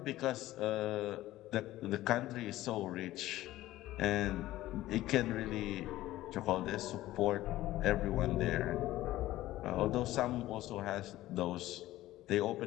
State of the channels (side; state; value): right; quieter; 15.7 dB